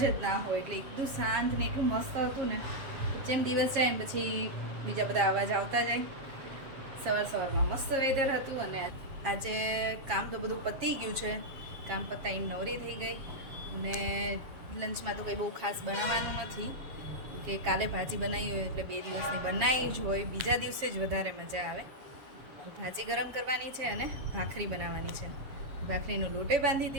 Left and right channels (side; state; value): left; late; 7.4 ms